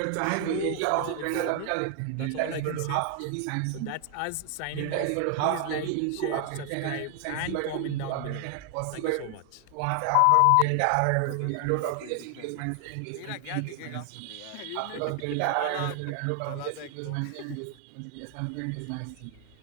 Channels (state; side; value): different; both; correlation 0.00